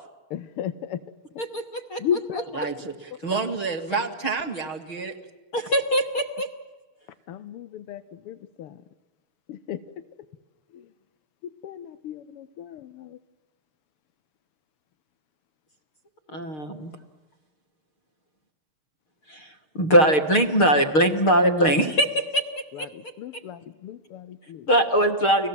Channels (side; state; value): right; late; 6.5 ms